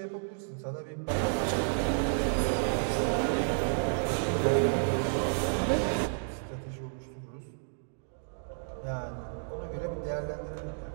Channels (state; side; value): silent; left; digital silence